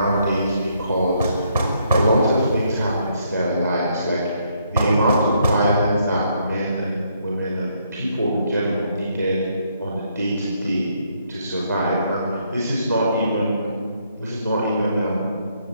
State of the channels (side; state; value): both; inverted; correlation -0.72